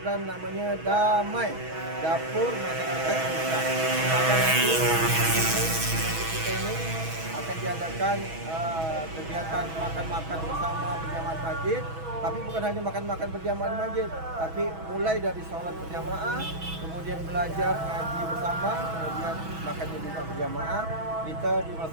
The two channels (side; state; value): left; late; 6.2 ms